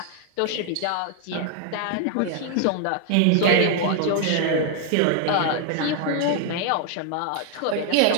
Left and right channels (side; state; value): both; different; correlation 0.00